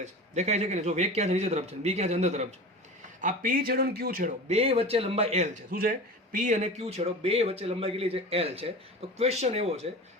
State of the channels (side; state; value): both; normal; correlation 0.33